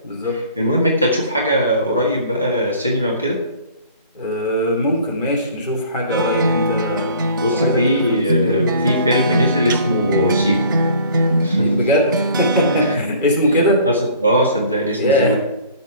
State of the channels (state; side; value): inverted; both; correlation -0.50